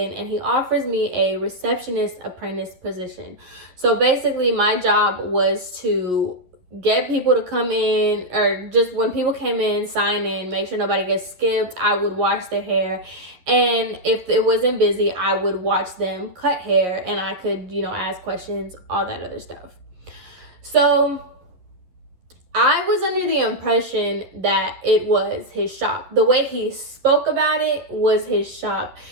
and he offers me a receptionist apprentice position. So basically, my job was to get people to come in, or just when people came in, sign in, make sure nobody gets skipped. I would wash their hair, and if it wasn't busy, I would watch them cut hair, and I could, you know, ask questions, all that other stuff. So I was under the impression that it was his shop. The way he spoke about it was his shop.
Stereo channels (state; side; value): late; left; 11 ms